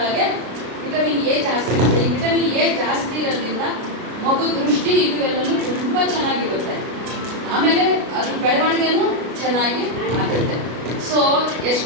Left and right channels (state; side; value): late; left; 33 ms